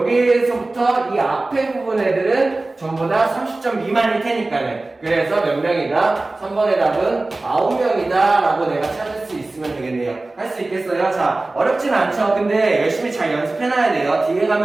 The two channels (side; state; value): left; quieter; 3.1 dB